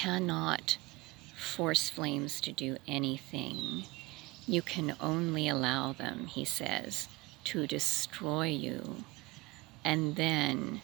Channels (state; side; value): quieter; left; 21.7 dB